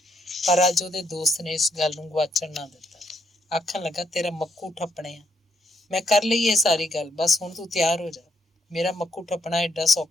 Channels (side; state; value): both; normal; correlation 0.73